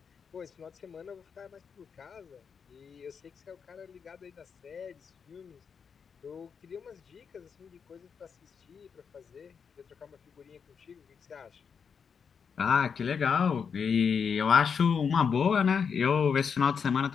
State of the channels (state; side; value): quieter; right; 6.4 dB